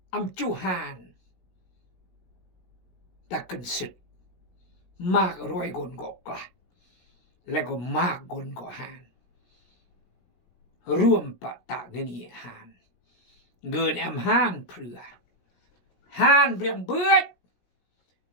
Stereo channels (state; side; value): late; right; 17 ms